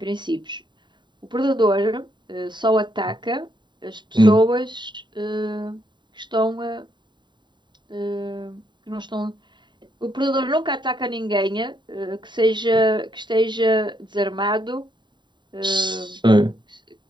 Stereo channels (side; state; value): left; late; 0.22 ms